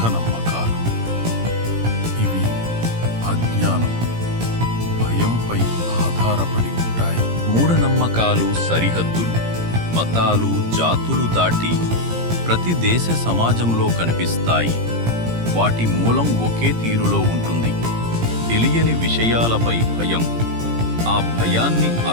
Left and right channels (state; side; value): late; left; 17 ms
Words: ఇవి అజ్ఞానం, భయంపై ఆధారపడి ఉంటాయి. మూఢనమ్మకాలు సరిహద్దులు, మతాలు, జాతులు దాటి ప్రతి దేశ సమాజంలో కనిపిస్తాయి. వాటి మూలం ఒకే తీరులో ఉంటుంది. తెలియని విషయాలపై భయం, ఆ భయాన్ని